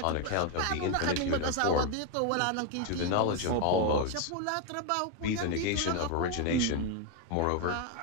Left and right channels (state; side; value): different; both; correlation 0.01